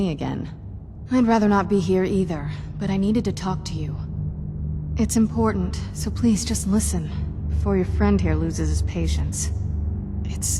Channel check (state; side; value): identical; both; correlation 1.00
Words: again. I'd rather not be here either, but I needed to talk to you. It's important, so please just listen, before your friend here loses his patience.